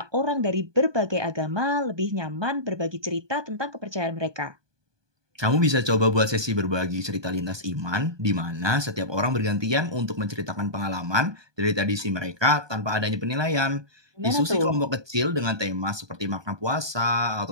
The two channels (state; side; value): late; left; 1.2 ms